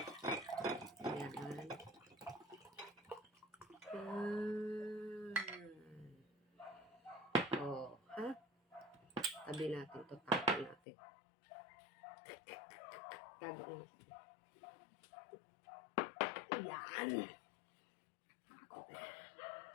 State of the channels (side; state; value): right; drops out; at 10.8 s